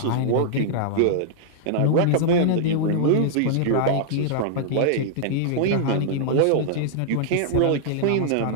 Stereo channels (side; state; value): both; different; correlation -0.01